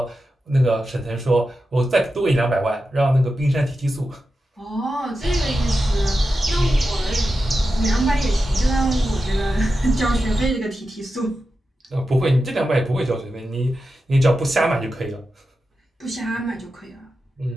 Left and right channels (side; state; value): both; normal; correlation 0.91